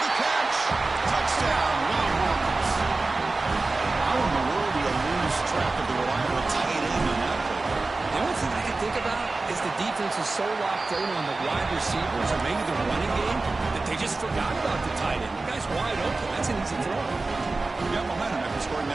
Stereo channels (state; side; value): quieter; left; 3.5 dB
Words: the catch. Touchdown, Longhorns. How in the world do you lose track of the reliable tight end on that play? The only thing I can think about is the defense is so locked in on the wide receivers or maybe the running game that they just forgot about the tight end. The guy's wide open. That's an easy throw. You got momentum after scoring